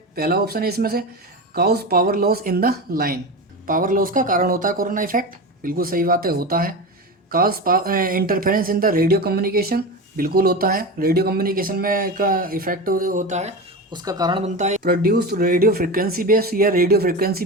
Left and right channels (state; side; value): normal; both; correlation 0.24